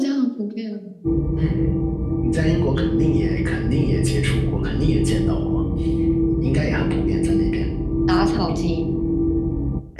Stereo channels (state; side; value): identical; both; correlation 1.00